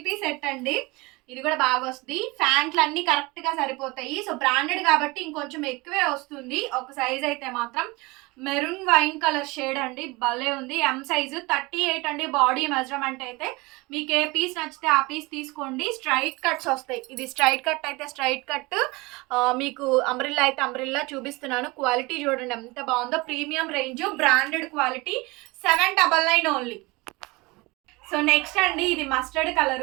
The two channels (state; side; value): quieter; left; 23.9 dB